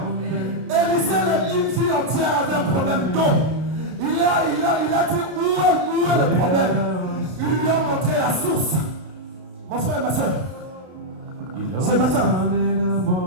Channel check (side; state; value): left; late; 32 ms